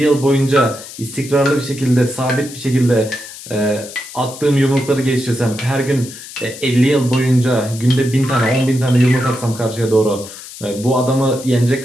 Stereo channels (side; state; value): left; noise; hiss, 14 dB below the sound